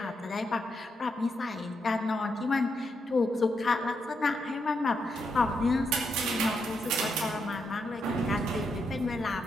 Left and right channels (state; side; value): normal; both; correlation 0.81